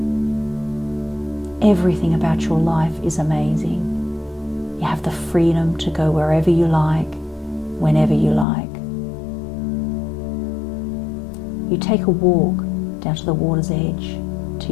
Everything about your life is amazing. You have the freedom to go wherever you like, whenever you like. You take a walk down to the water's edge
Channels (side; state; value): right; drops out; at 8.5 s